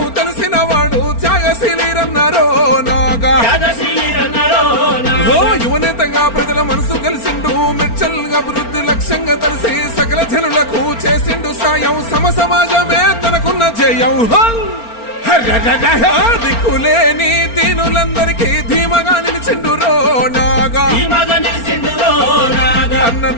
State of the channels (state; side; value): late; right; 4.3 ms